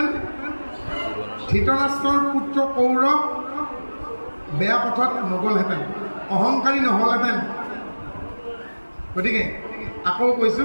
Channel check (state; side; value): inverted; both; correlation -1.00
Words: ধৃতৰাষ্ট্ৰৰ পুত্ৰ কৌৰৱ বেয়া পথত নগ'লহেঁতেন অহংকাৰী নহ'লহেঁতেন গতিকে আকৌ